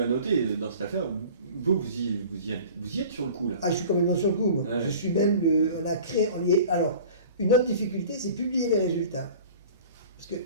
noter dans cette affaire. Vous y êtes sur le coup, là. Ah, je suis complètement sur le coup, moi. Ouais. Je suis même, on a créé, alors, une autre difficulté, c'est publier les résultats. Parce que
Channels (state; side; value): inverted; both; correlation -0.43